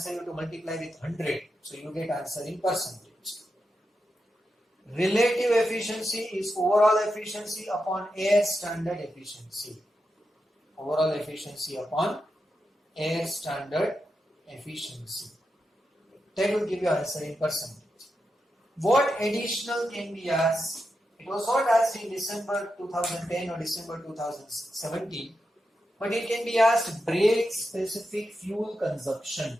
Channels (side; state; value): both; normal; correlation 0.87